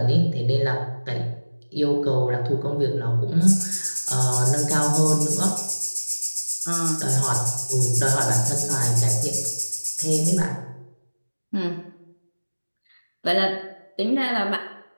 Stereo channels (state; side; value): inverted; both; correlation -1.00